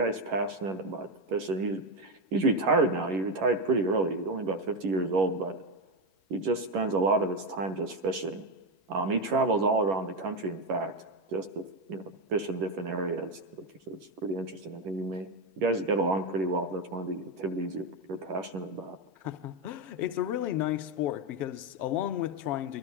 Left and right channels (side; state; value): left; late; 11 ms